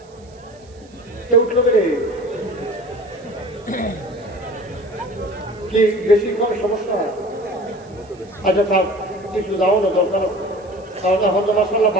কেউ উঠলো রে কি বেশি কোনো সমস্যা হয়? আচ্ছা থাক, কিছু যাও না, দরকার আছে। কারণ এখন তো মাসাল্লাহ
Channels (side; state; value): right; noise; hiss, 29 dB below the sound